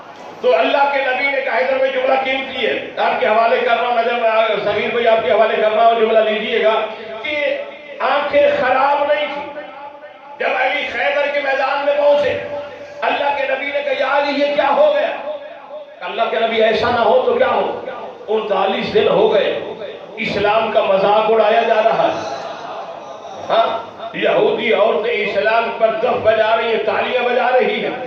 تو اللہ کے نبی نے کہا ادھر میں جملہ قیمتی ہے آپ کے حوالے کر رہا ہوں، نظر سمیر بھائی آپ کے حوالے کر رہا ہوں، جملہ لیجئے گا کہ آنکھیں خراب نہیں تھی. جب علی خیبر کے میدان میں پہنچے اللہ کے نبی نے کہا یا علی یہ کیا ہو گیا؟ اللہ کے نبی ایسا نہ ہو تو کیا ہو، 39 دن ہو گئے اسلام کا مذاق اڑایا جا رہا ہے. ہاں یہودی عورتیں اسلام پر دف بجا رہی ہیں، تالیاں بجا رہی ہیں،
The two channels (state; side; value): identical; both; correlation 1.00